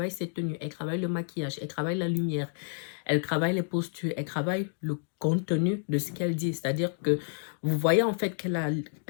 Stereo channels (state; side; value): silent; right; 58 dB below the other